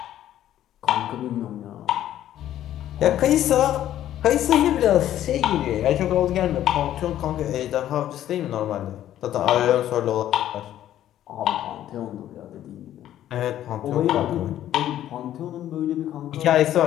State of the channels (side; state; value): right; quieter; 12.1 dB